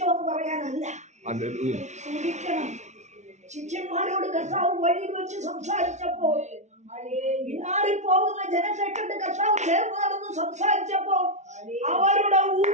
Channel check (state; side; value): late; left; 0.33 ms